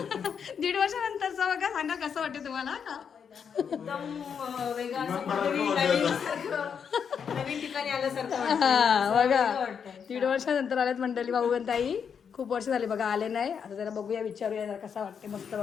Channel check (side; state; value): right; quieter; 7.1 dB